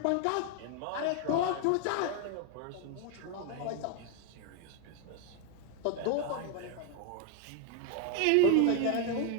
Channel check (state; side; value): different; both; correlation 0.01